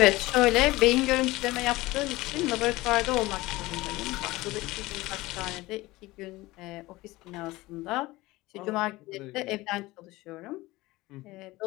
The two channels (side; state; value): right; quieter; 19.7 dB